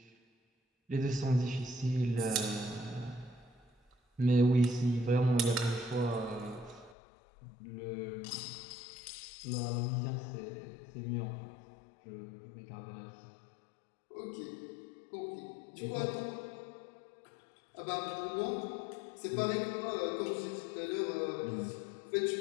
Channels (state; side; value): drops out; right; at 7.0 s